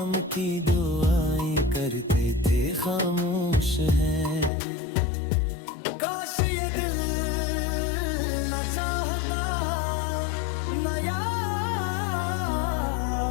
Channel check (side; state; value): right; drops out; at 4.5 s